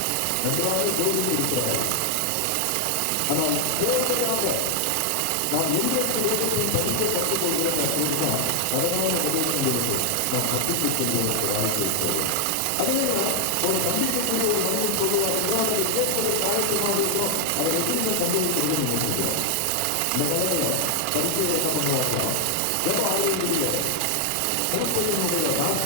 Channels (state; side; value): different; both; correlation 0.00